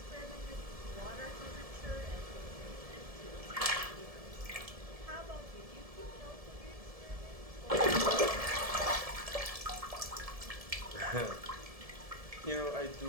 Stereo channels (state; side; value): late; left; 1.7 ms